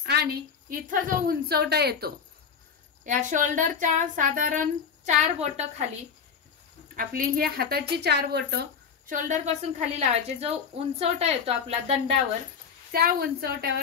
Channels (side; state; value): right; quieter; 6.6 dB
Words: आणि इथं जो उंचवटा येतो या शोल्डरच्या साधारण 4 बोट खाली आपली ही हाताची 4 बोट शोल्डर पासून खाली लावायचे. जो उंचवटा येतो आपला दंडावर त्या